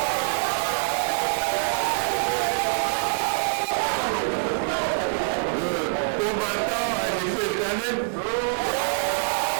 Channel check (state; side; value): silent; left; 62 dB below the other